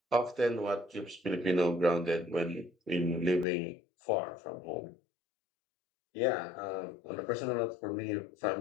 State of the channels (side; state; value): right; drops out; at 3.5 s